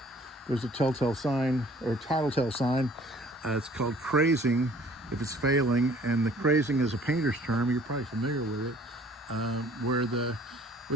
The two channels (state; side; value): normal; both; correlation 0.55